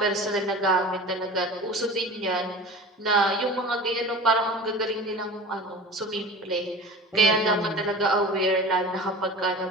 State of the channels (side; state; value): both; normal; correlation 0.37